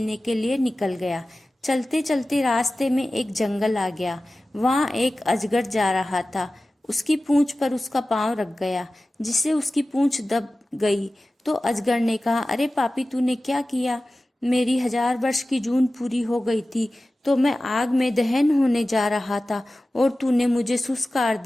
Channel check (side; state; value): both; normal; correlation 0.96